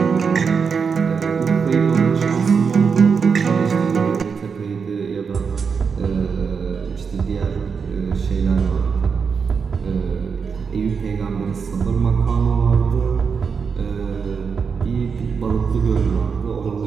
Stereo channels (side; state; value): left; quieter; 5.8 dB